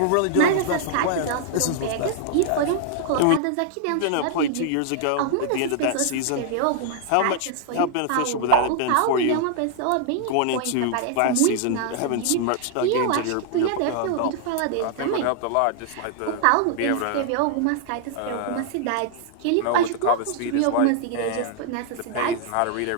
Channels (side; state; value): both; different; correlation -0.01